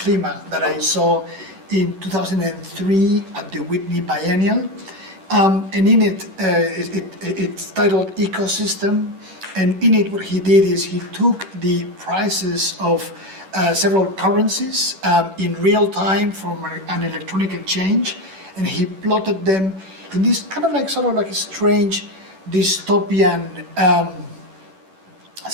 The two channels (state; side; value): late; left; 11 ms